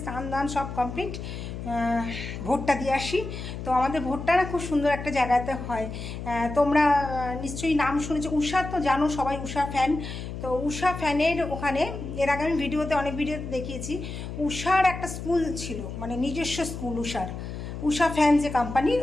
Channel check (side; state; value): left; noise; hum, 8 dB below the sound